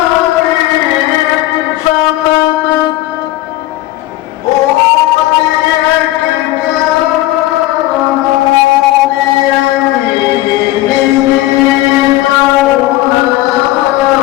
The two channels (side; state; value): right; quieter; 16.4 dB